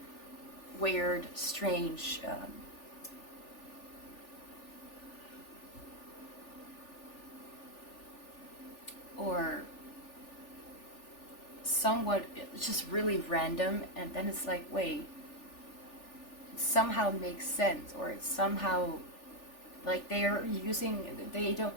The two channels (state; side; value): late; right; 3.4 ms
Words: weird, strange, or somewhat just really random, and then it's like, wait, it somehow makes sense, or it's somehow like they're using, they don't,